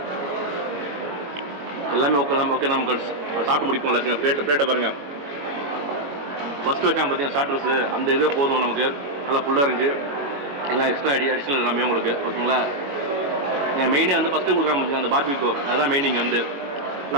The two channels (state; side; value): late; left; 21 ms